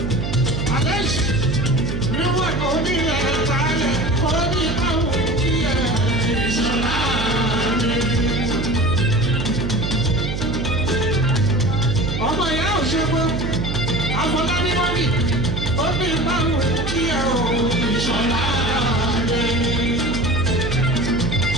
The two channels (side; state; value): right; noise; hum, 3 dB below the sound